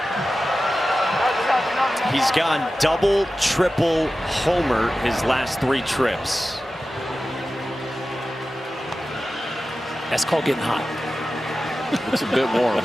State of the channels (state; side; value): normal; both; correlation 0.94